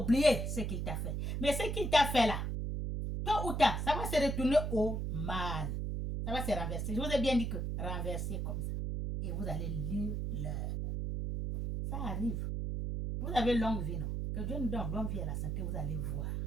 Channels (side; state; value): right; noise; hum, 1 dB below the sound